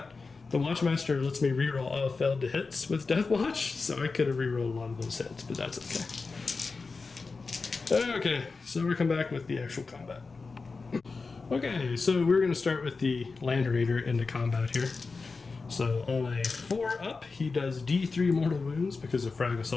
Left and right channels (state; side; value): quieter; right; 4.3 dB